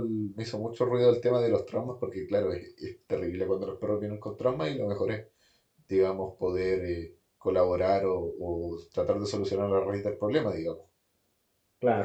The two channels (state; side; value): identical; both; correlation 1.00